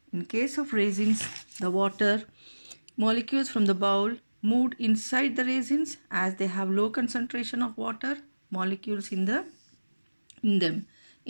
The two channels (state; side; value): inverted; both; correlation -1.00